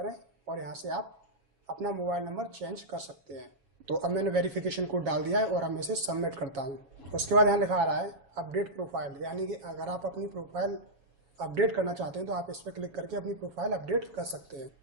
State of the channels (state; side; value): late; left; 7.3 ms